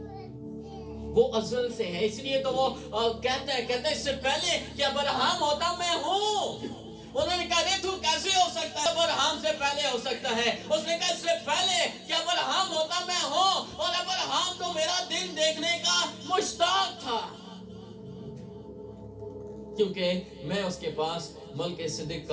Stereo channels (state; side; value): identical; both; correlation 1.00